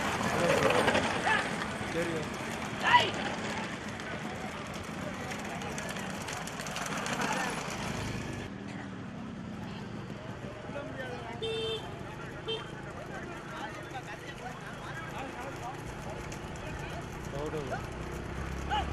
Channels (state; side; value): identical; both; correlation 1.00